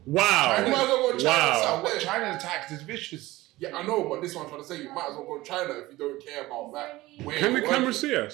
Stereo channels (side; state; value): left; quieter; 18.5 dB